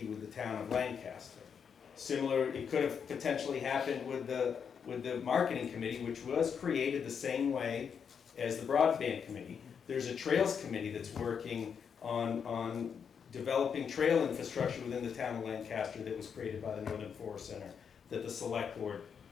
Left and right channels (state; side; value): quieter; right; 7.0 dB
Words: with the town of Lancaster. Similar, it could have potentially happened with the marketing committee, which was created the same way as the broadband committee. There's a trails committee that's working on developing trail infrastructure within the town of Lancaster that was created by the Northern Forest Center that the select board